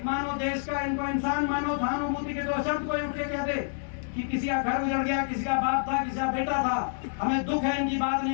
मानो देश का, इनको इंसान मानो। सहानुभूति के 2 शब्द कोई उठ के कह दे कि किसी का घर उजड़ गया, किसी का बाप था, किसी का बेटा था, हमें दुख है, इनकी बात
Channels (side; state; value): right; silent; digital silence